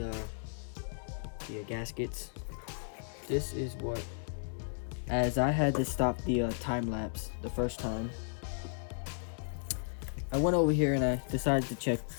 gaskets. This is what. As I had to stop the time lapse the first time, I went over here and I decided to check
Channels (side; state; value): right; silent; digital silence